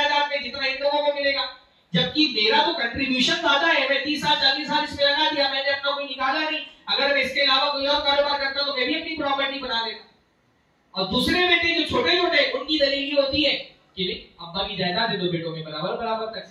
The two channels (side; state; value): both; identical; correlation 1.00